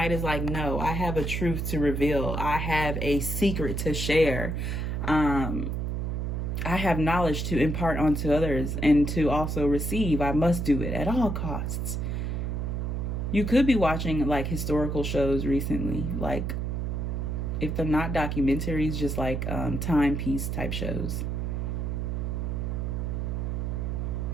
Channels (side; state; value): right; noise; hum, 1 dB below the sound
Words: is like, no, I have a truth to reveal. I have a secret to share. I have knowledge to impart onto others and to also receive. I must do it at all costs. You could be watching like historical shows recently, like if they're not documentaries, just like timepiece type shows.